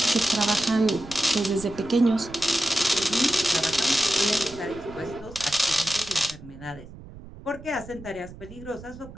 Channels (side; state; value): right; noise; rumble, 16 dB below the sound